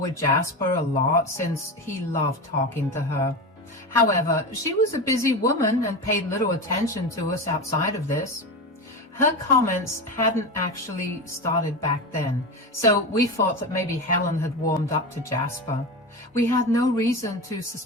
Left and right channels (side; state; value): both; normal; correlation 0.22